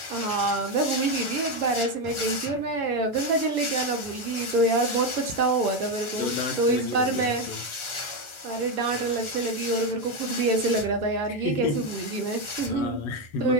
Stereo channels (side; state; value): right; late; 1.4 ms